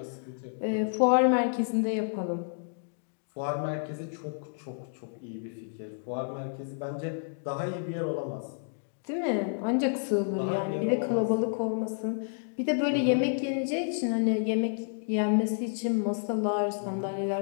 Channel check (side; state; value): right; silent; digital silence